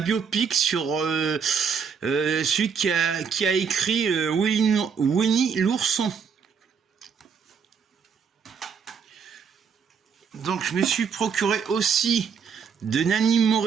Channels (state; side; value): quieter; left; 6.4 dB